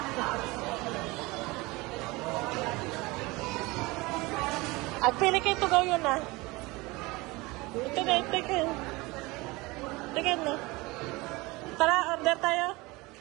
At pili kayo tugaw yun ah. Ito na, ito na. Tara, order tayo.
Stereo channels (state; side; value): quieter; left; 22.9 dB